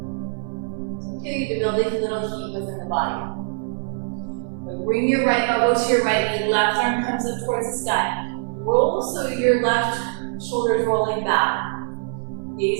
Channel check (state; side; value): silent; left; 57 dB below the other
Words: It's okay to build a little heat within the body. But bring your right elbow to your right knee, left arm comes up towards the sky. Roll so your left shoulder is rolling back.